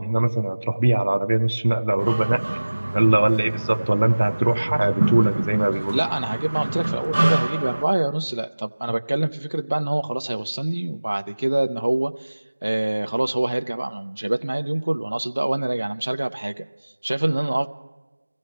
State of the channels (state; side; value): inverted; both; correlation -1.00